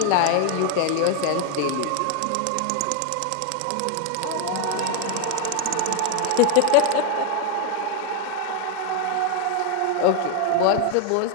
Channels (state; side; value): different; both; correlation 0.00